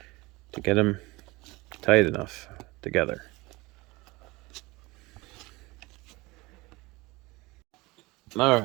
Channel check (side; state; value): left; quieter; 22.7 dB